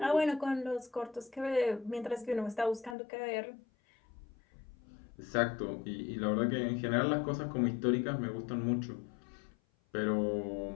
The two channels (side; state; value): right; drops out; at 3.0 s